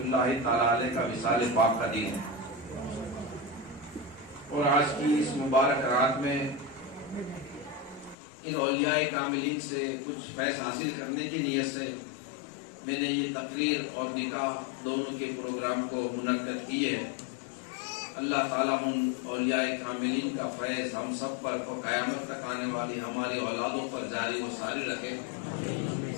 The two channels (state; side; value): drops out; right; at 8.2 s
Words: اللہ تعالیٰ علیہ کا وصال پاک کا دن ہے۔ اور آج کی اس مبارک رات میں ان اولیاء کاملین سے کچھ فیض حاصل کرنے کی نیت سے میں نے یہ تقریر اور نکاح دونوں کے پروگرام کو منعقد کیے ہے۔ اللہ تعالیٰ ان اولیاء کاملین کا فیض ہم سب پر اور قیامت تک آنے والی ہمارے اولادوں پر جاری و ساری رکھے،